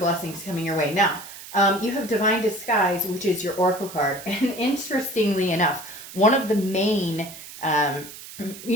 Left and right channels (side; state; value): right; noise; hiss, 14 dB below the sound